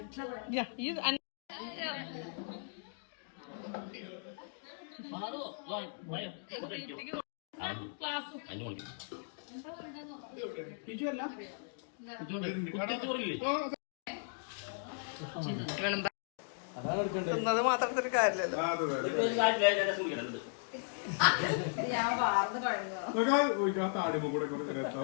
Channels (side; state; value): right; silent; digital silence